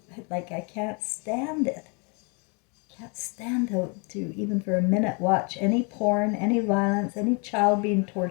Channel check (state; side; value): quieter; right; 33.9 dB